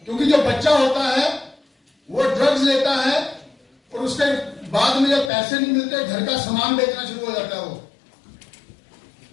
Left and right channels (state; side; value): drops out; right; at 5.3 s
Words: क्योंकि जो बच्चा होता है वो ड्रग्स लेता है और उसके बाद में जब पैसे नहीं मिलते घर का सामान बेचना शुरू हो जाता है। वो